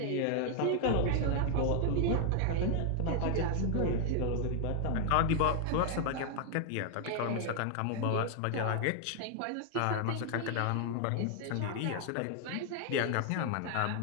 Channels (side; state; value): both; different; correlation 0.00